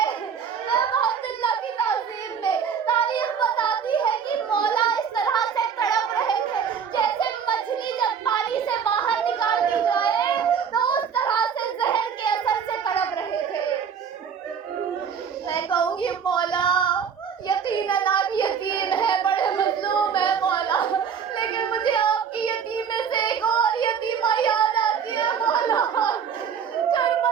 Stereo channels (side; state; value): left; quieter; 7.2 dB